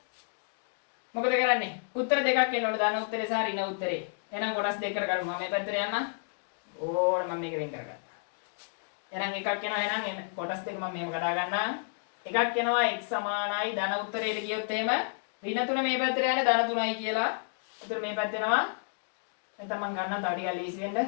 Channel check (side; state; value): right; silent; digital silence